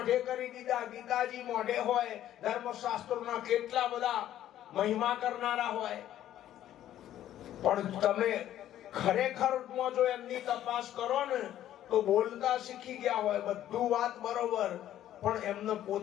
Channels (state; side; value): quieter; right; 12.1 dB